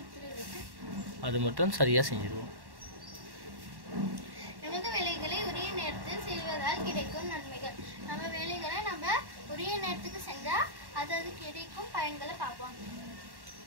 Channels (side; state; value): left; late; 1.1 ms